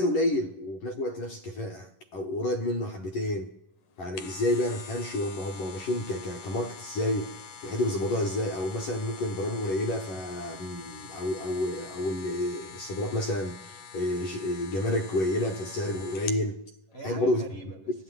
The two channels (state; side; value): late; right; 11 ms